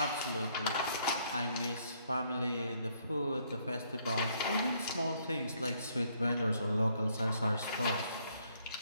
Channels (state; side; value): inverted; both; correlation -0.69